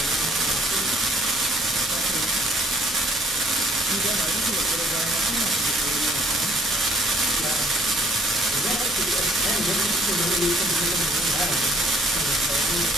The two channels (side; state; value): both; normal; correlation 0.61